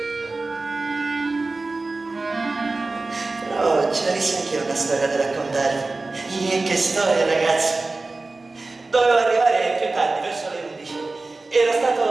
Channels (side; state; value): left; quieter; 3.4 dB